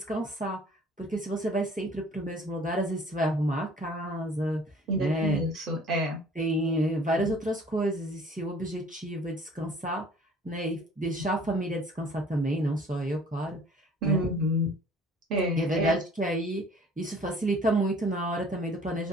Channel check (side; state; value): both; normal; correlation 0.52